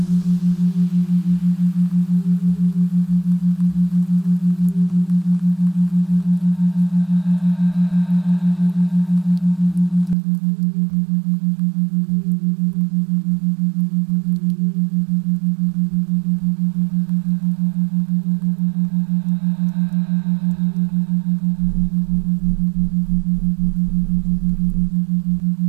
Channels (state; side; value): drops out; left; at 10.2 s